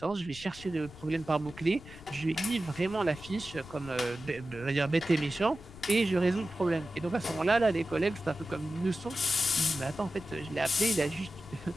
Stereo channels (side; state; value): left; noise; rumble, 18 dB below the sound